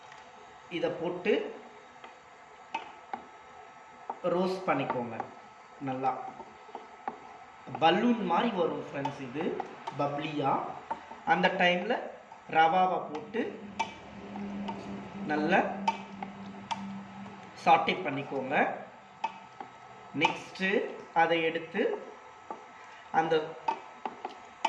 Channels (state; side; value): identical; both; correlation 1.00